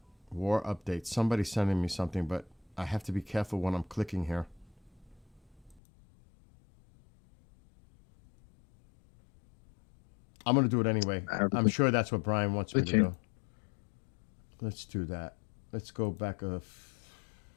War update. Somebody's sending me something, but I have to be careful when I'm clicking here. I'm going to do it anyway. I'm sure that's what Brian wants me to do. Let's do that. Let's go back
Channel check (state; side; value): drops out; right; at 5.8 s